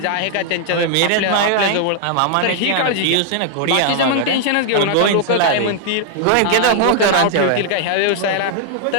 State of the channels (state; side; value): different; both; correlation 0.00